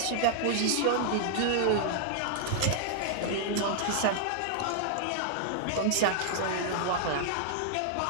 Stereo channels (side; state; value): both; different; correlation -0.01